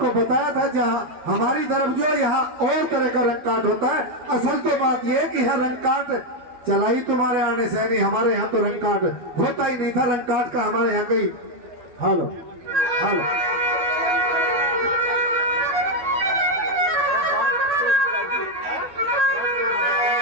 बताया था। जहाँ हमारी तरफ जो यहाँ और तरह का रन कार्ड होता है। असल तो बात ये है कि यहाँ रन कार्ड चला ही तुम्हारे आने से नहीं, हमारे यहाँ तो रन कार्ड होता ही नहीं था। रन कार्ड का हमारे यहाँ कहीं हेलो हेलो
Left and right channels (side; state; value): left; late; 12 ms